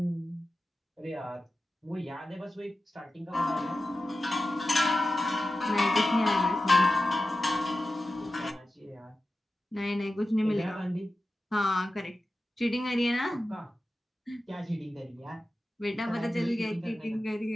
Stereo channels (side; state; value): both; normal; correlation 0.93